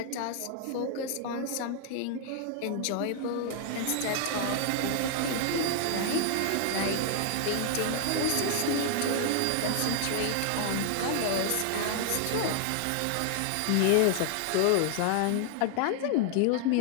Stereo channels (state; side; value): different; both; correlation 0.00